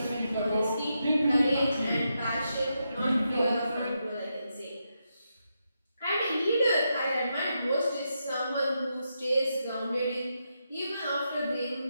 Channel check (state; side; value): inverted; both; correlation -0.84